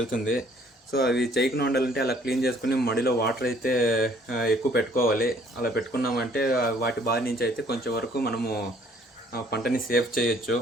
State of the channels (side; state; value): both; normal; correlation 0.60